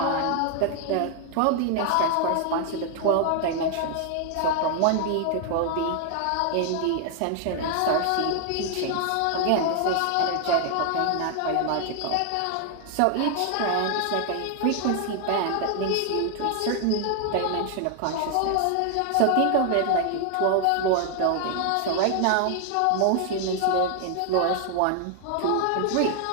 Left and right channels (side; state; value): both; different; correlation 0.00